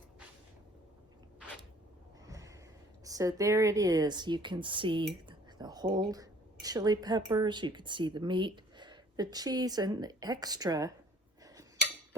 So there it is. You can see the whole chili peppers, you can see the meat, the cheese, and the extra.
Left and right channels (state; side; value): normal; both; correlation 0.55